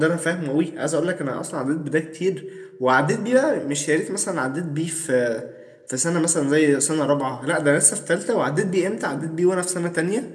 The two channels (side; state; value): both; identical; correlation 1.00